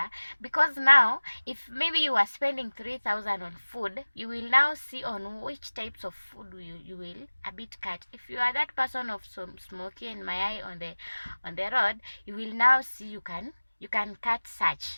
because now if maybe you are spending 3,000 on food, you will now see on which types of food you will a bit cut. If you are that person of some smoky and my eye on the road, you will now see you can cut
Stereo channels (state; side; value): inverted; both; correlation -1.00